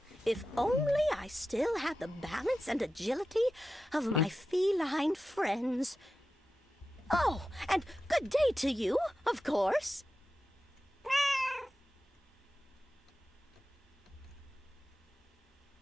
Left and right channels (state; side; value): normal; both; correlation 0.92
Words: If only I still had the balance and agility of my feline friends. Oh, and good day to you, of course.